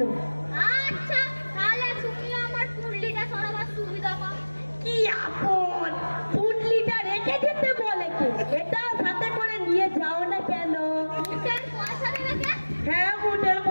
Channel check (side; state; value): both; inverted; correlation -1.00